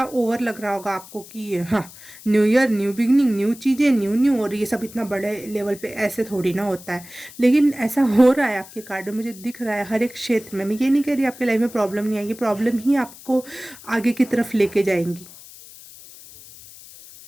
ओवर लग रहा होगा आपको कि हाँ, new year new beginning, new चीज़ें, न्यू न्यू, और ये सब इतना बड़े लेवल पे ऐसे थोड़ी ना होता है। लेकिन ऐसा हो रहा है आपके कार्ड में, मुझे दिख रहा है हर एक क्षेत्र में। मैं ये नहीं कह रही आपकी लाइफ में प्रॉब्लम नहीं आएगी, प्रॉब्लम ही आपको आगे की तरफ लेके जाएंगी।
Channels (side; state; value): left; noise; hiss, 19 dB below the sound